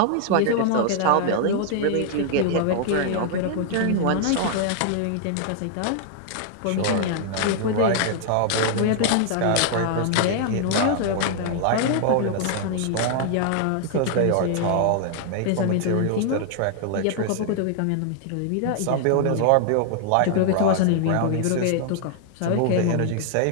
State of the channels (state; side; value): different; both; correlation 0.00